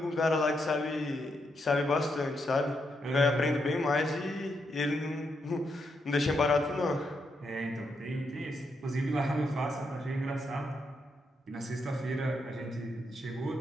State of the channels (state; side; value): normal; both; correlation 0.80